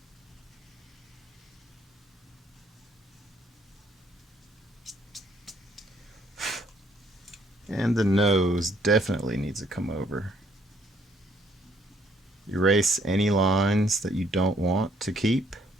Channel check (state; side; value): normal; both; correlation 0.67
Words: And the nose definitely needs to come over. Erase any lines that you don't want to keep